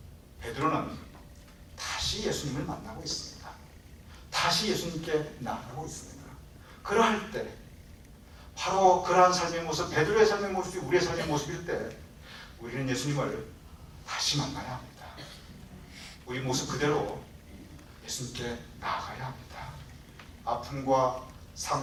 베드로는 다시 예수님을 만나고 있습니다. 다시 예수님께 나아가고 있습니다. 그러할 때 바로 그러한 삶의 모습, 베드로의 삶의 모습이 우리의 삶의 모습일 때 우리는 예수님을 다시 만나야 합니다. 우리 모습 그대로 예수님께 나아가야 합니다. 아픔과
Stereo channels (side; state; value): both; identical; correlation 1.00